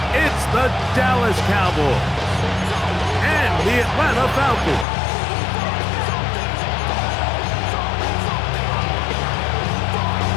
It's the Dallas Cowboys and the Atlanta Falcons.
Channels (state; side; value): drops out; right; at 4.9 s